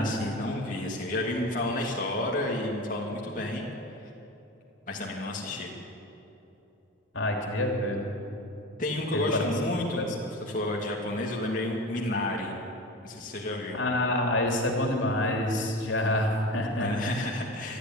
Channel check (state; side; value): normal; both; correlation 0.30